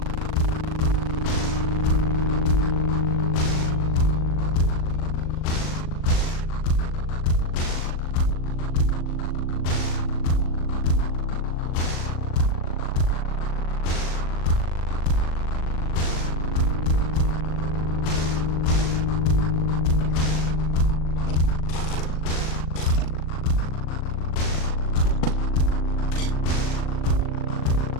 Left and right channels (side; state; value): right; late; 39 ms